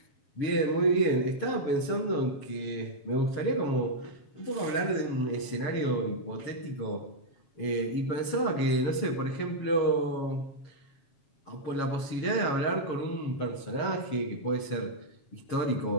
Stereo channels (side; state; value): right; late; 7.2 ms